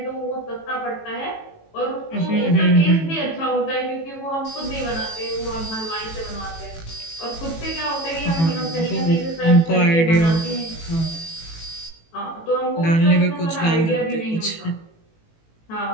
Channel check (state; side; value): late; right; 18 ms